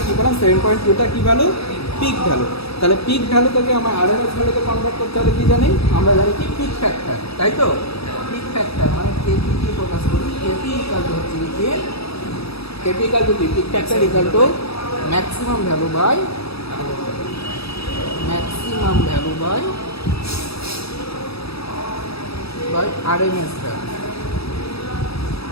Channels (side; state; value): right; late; 0.77 ms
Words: কি পেলাম? 7.2টা কি ভ্যালু? Pick value. তাহলে পিক ভ্যালু থেকে আমার আরএমএস ভ্যালুতে কনভার্ট করতে হলে কি জানি? আমরা জানি কি পিক ফ্যাক্টর, তাই তো? পিক ফ্যাক্টর মানে কেপি কি প্রকাশ করি? কেপি ইকাল টু হচ্ছে কি? কেপি ইকাল টু কি? Peak factor equal to maximum value by RMS value,